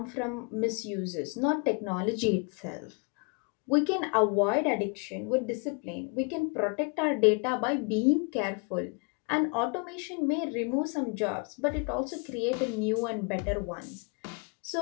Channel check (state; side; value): quieter; right; 34.5 dB